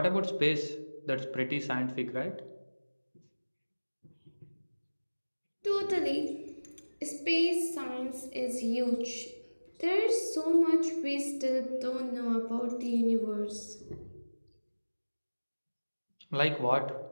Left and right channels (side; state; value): both; inverted; correlation -1.00